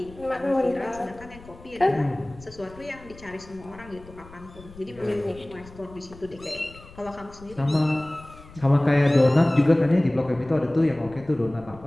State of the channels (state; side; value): noise; left; rumble, 20 dB below the sound